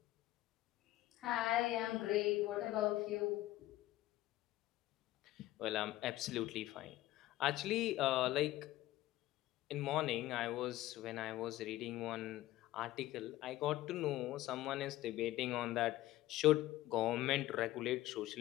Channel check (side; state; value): right; quieter; 16.0 dB